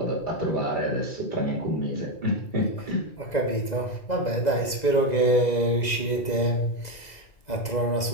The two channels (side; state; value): right; late; 2.0 ms